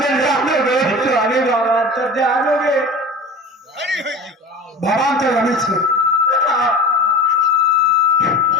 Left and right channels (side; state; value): both; normal; correlation 0.35